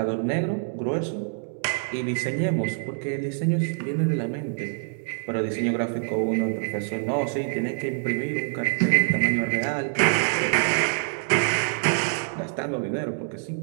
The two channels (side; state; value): left; silent; 61 dB below the other